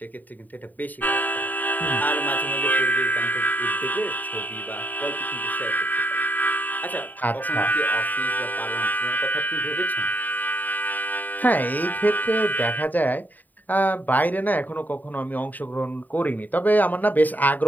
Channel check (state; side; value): late; right; 0.085 ms